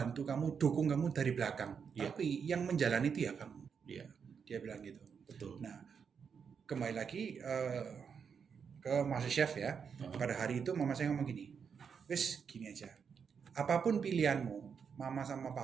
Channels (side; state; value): left; quieter; 6.6 dB